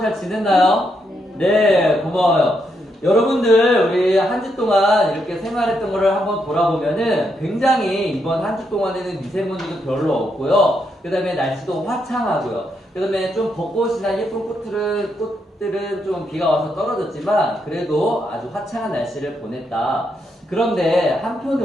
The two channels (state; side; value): normal; both; correlation 0.79